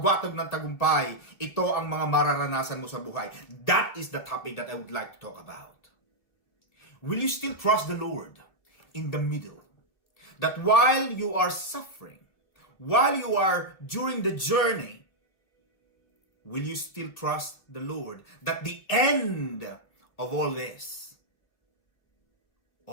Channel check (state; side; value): late; right; 2.3 ms